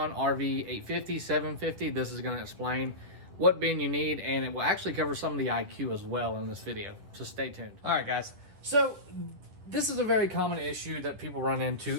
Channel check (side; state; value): left; late; 10 ms